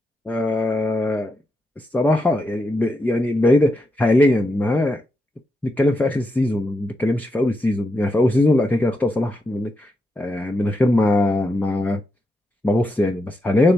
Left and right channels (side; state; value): both; normal; correlation 0.84